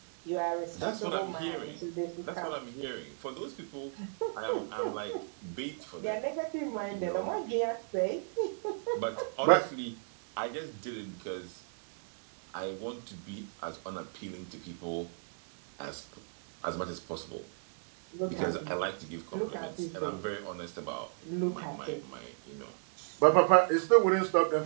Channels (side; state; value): left; silent; digital silence